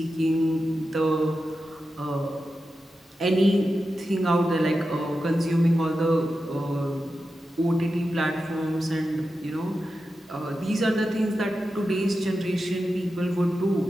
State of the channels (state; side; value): normal; both; correlation 0.91